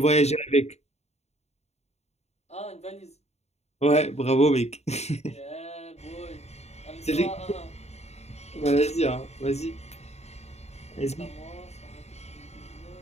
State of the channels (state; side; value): late; right; 0.31 ms